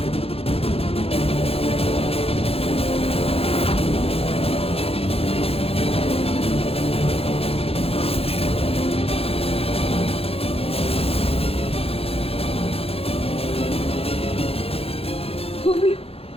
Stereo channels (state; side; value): late; right; 0.28 ms